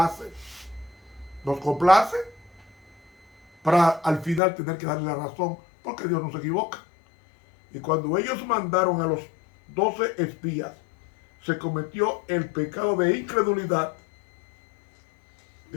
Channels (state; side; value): drops out; right; at 4.4 s